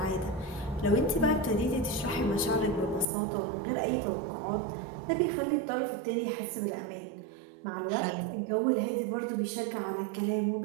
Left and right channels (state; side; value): drops out; left; at 3.1 s